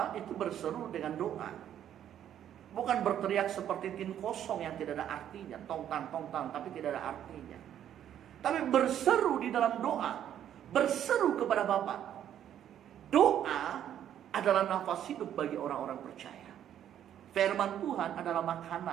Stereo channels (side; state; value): left; quieter; 10.4 dB